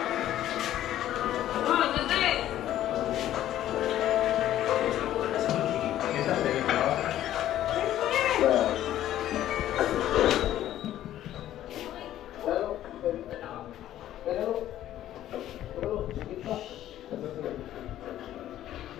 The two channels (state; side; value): quieter; right; 12.6 dB